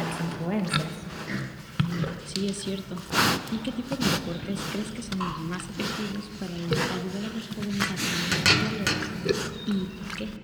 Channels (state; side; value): identical; both; correlation 1.00